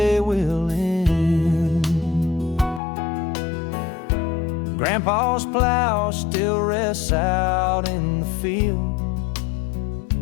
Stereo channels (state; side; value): drops out; right; at 2.8 s